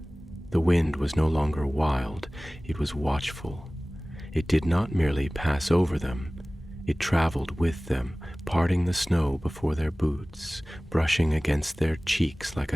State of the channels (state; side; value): normal; both; correlation 0.98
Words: The wind was no longer wild, it was watchful. It did not merely pass over them, it traveled with them, parting the snow before their boots, brushing against their cheeks like